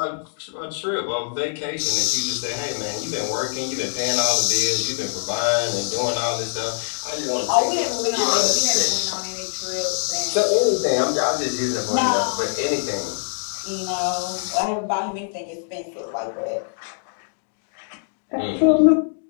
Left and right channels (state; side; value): silent; right; digital silence